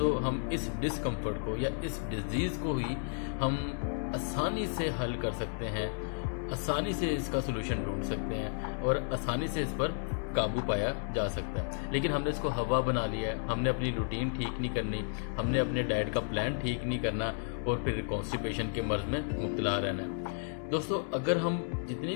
ہم اس ڈسکمفرٹ کو یا اس ڈیزیز کو ہی ہم آسانی سے حل کر سکتے ہیں، آسانی سے اس کا سلوشن ڈھونڈ سکتے ہیں اور آسانی سے اس پر قابو پایا جا سکتا ہے۔ لیکن ہم نے اس کو ہوا بنا لیا ہے، ہم نے اپنی روٹین ٹھیک نہیں کرنی، ہم نے اپنے ڈائٹ کا پلان ٹھیک نہیں کرنا اور پھر کانسٹیپیشن کے مرض میں مبتلا رہنا ہے۔ دوستو، اگر ہم جتنی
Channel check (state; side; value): silent; right; digital silence